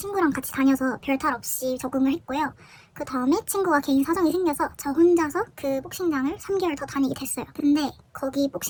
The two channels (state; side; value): identical; both; correlation 1.00